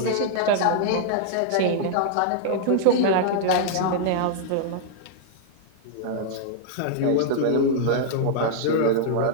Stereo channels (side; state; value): both; different; correlation -0.01